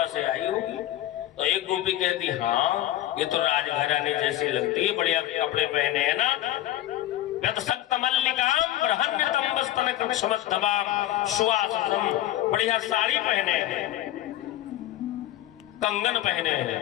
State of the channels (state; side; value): quieter; right; 13.8 dB